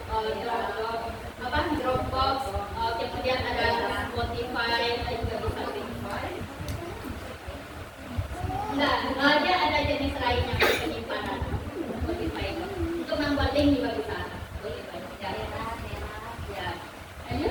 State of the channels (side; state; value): both; identical; correlation 1.00